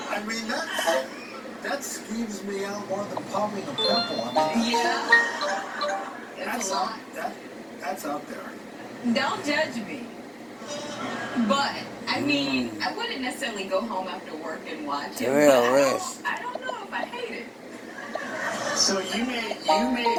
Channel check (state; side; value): identical; both; correlation 1.00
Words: mean, that skeeves me out more than popping a pimple. I mean, Yeah. That's out there. Don't judge me. But, I mean, I wouldn't necessarily go home after work and watch it. Real But risk. I don't know if I hate it. So you may